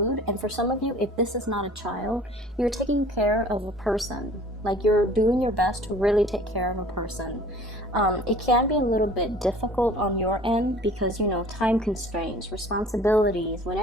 And for some of you, if this is not a child, you're taking care of a person. Like, you're doing your best to really take care of a person. It can be a little bit difficult on your end because, you know, time constraints, responsibilities,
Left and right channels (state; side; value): normal; both; correlation 0.48